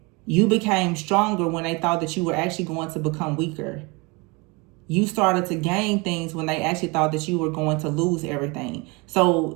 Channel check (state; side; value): quieter; left; 27.7 dB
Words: You became stronger when they thought that you were actually going to become weaker. You started to gain things when they actually thought that you were going to lose everything.